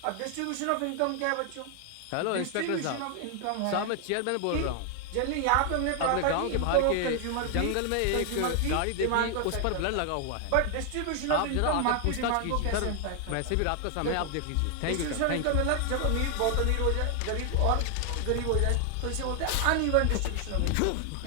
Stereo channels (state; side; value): different; both; correlation 0.00